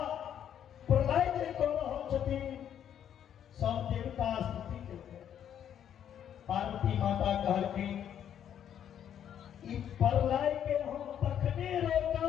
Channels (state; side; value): quieter; right; 9.6 dB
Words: प्रलय जे को होती सब देवता स्तुति करते। पार्वती माता कहल के ई प्रलय के हम तखने रोका